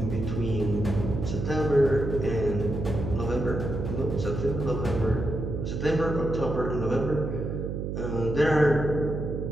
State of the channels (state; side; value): noise; right; hum, 3 dB below the sound